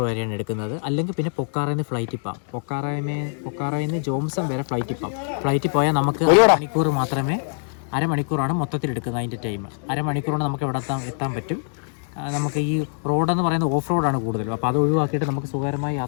വരെയാണ് എടുക്കുന്നത്. അല്ലെങ്കിൽ പിന്നെ പൊക്കാറയിൽ നിന്ന് ഫ്ലൈറ്റിൽ പോകാം. പൊക്കാറയിൽ നിന്ന് ജോംസം വരെ ഫ്ലൈറ്റിൽ പോകാം. ഫ്ലൈറ്റിൽ പോയാൽ നമുക്ക് മണിക്കൂർ മാത്രമേ, അരമണിക്കൂറാണ് മൊത്തത്തിൽ എടുക്കുന്നത് അതിൻ്റെ ടൈം. അരമണിക്കൂറാണ് നമുക്ക് ഇവിടെ എത്താൻ പറ്റും. നമുക്ക് ഈ റോഡെന്ന് പറയുന്നത് ഓഫ് റോഡാണ് കൂടുതലും. അപ്പോൾ അത് ഒഴിവാക്കിയിട്ട് നമുക്ക് സുഖകരമായി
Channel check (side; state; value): right; silent; digital silence